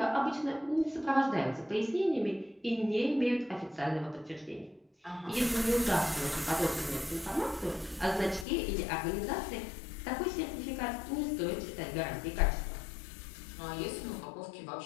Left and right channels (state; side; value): drops out; right; at 8.5 s